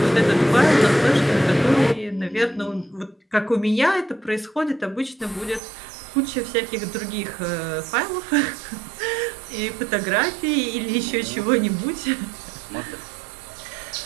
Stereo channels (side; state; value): left; drops out; at 5.6 s